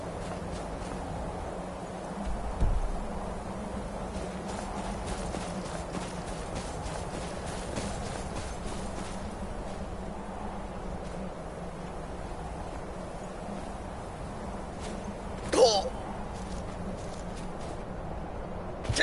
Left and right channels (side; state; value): both; identical; correlation 1.00